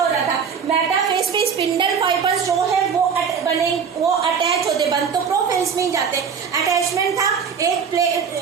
रहा था, मेटाफेज में स्पिंडल फाइबर्स जो है वो अटैच होते, बंद तो प्रोफेज में ही जाते, अटैचमेंट था। एक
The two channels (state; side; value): quieter; left; 6.6 dB